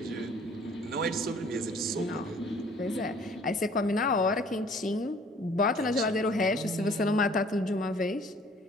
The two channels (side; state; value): both; normal; correlation 0.55